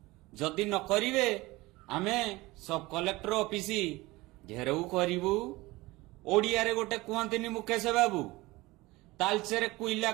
जदि न करिवे आमे सब कलेक्टर ऑफिस घेराऊ करिवु। ओडिया रे गोटे कहंतिनी मुकेश बाबू तालचेरे कुइला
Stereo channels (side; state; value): left; quieter; 20.7 dB